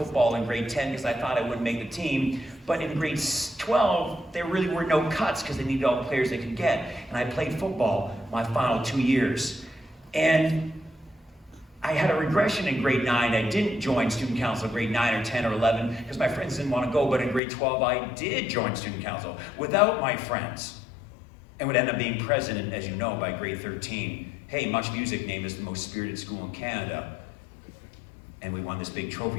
in grade 10 because I thought I wouldn't make the team. But in grade 12, there really were no cuts because they needed all the players they could get. And I played football my final 2 years. And I had a regression in grade 9. I didn't join student council in grade 9 or 10 or 11 because my friends didn't want to go. But in grade 12, I did join student council without my friends and would end up being president, as you know, by grade 13. Hey, Much Music named us the most spirited school in Canada. And we won this big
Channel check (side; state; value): right; drops out; at 17.4 s